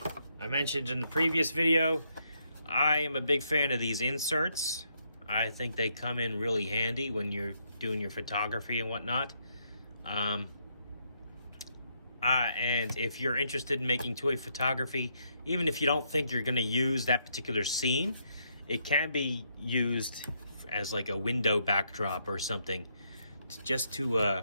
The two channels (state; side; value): inverted; both; correlation -0.75